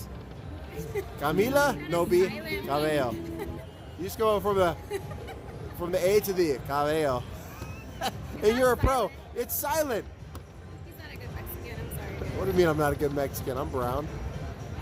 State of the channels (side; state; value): both; identical; correlation 1.00